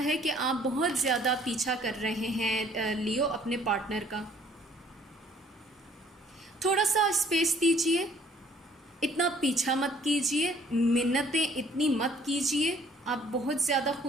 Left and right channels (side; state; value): both; normal; correlation 0.59